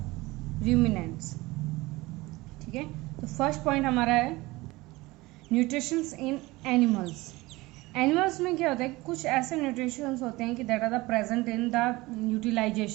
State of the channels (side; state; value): left; quieter; 20.9 dB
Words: ruminants. ठीक है, तो first point हमारा है nutritions इन animals. Animals में क्या होता है, कुछ ऐसे न्यूट्रिशंस होते हैं कि that are the present in the